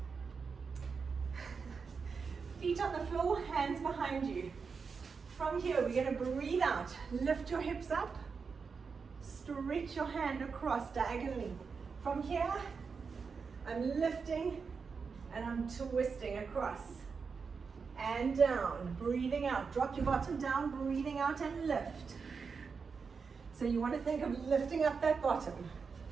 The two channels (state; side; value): quieter; left; 5.3 dB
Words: Feet on the floor, hands behind you. From here, we're going to breathe out. Lift your hips up. Stretch your hand across diagonally. From here, I'm lifting and I'm twisting across. And down, breathing out. Drop your bottom down, breathing out and lift. So you want to think of lifting up that bottom.